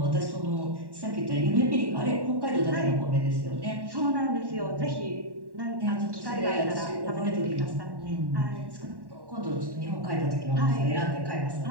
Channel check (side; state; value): left; late; 1.1 ms